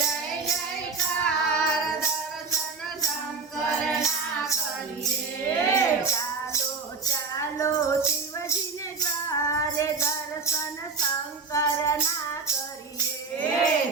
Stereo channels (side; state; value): left; quieter; 4.6 dB